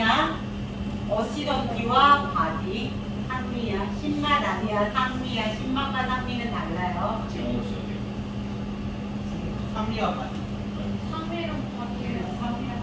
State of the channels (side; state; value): both; identical; correlation 1.00